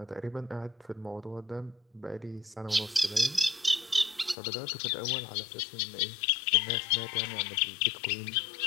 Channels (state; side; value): drops out; right; at 4.4 s